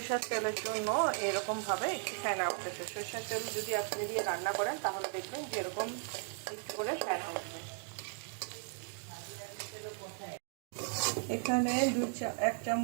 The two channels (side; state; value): left; silent; 54 dB below the other